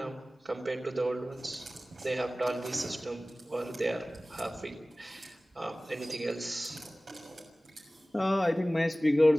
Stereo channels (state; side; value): normal; both; correlation 0.98